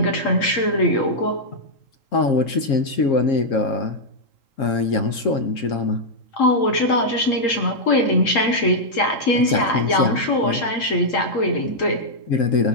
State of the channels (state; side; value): late; right; 3.8 ms